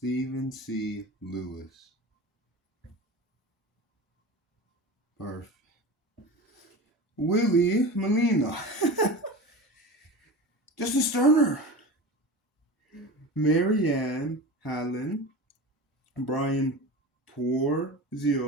C. Lewis. Perfect. Willie Molina, Justin Sterner, Marianne Hallen, Brian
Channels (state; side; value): normal; both; correlation 0.30